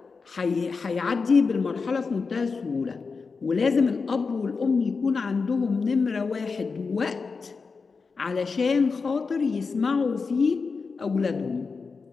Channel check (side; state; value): right; quieter; 4.7 dB